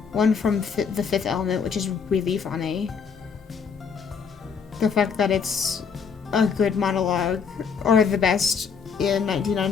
One from The Fifth Element, which is really funny. The fact that it's a good monologue, or the best in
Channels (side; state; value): right; quieter; 6.0 dB